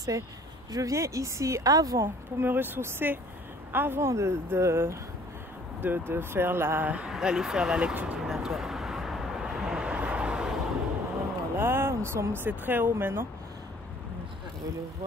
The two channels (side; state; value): both; normal; correlation 0.54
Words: je viens ici avant pour me ressourcer, avant d'aller faire la lecture divinatoire. Voilà, c'est très haut maintenant. Vous pouvez le